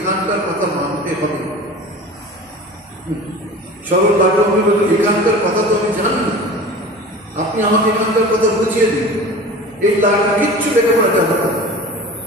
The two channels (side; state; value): both; normal; correlation 0.37